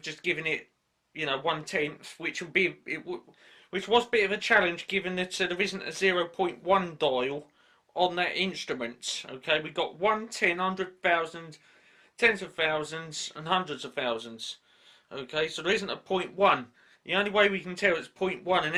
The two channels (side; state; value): both; identical; correlation 1.00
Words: just given it, you know, 1/10, which would be which was a bit of a challenge given that there isn't a 0.1 dial on that instrument. Okay, we got 1, 10, 100,000, tens of thousands and hundreds of thousands. Okay, so there isn't a 0.1. The only way we can tell it's 0.1, and